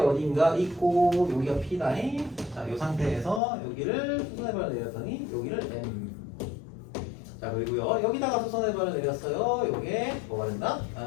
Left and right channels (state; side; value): drops out; right; at 3.4 s